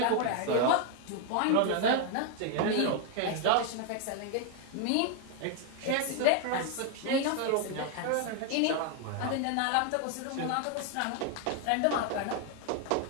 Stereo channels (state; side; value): different; both; correlation 0.00